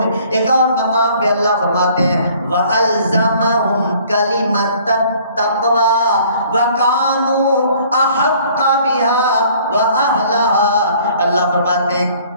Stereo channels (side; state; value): both; inverted; correlation -0.56